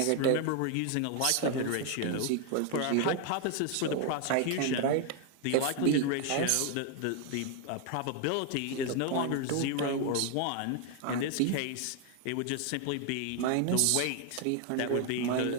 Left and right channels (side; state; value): both; different; correlation 0.00